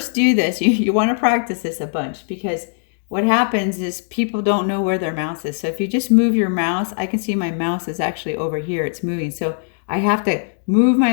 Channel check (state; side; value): silent; right; digital silence